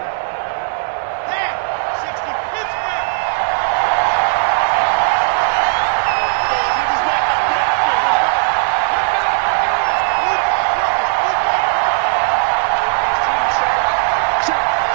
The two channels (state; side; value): silent; left; digital silence